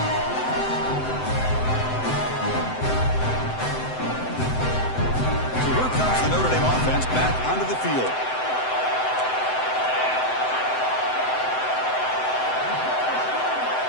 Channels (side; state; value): right; late; 7.8 ms